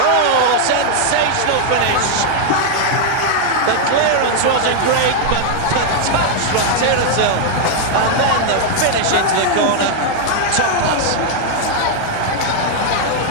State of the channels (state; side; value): different; both; correlation 0.00